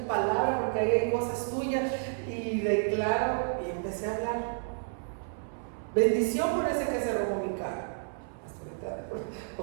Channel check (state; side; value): silent; left; 57 dB below the other